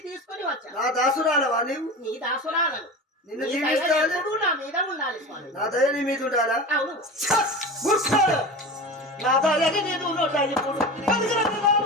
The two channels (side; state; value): both; normal; correlation 0.30